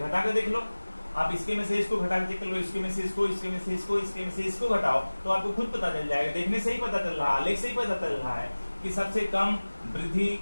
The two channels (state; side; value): inverted; both; correlation -1.00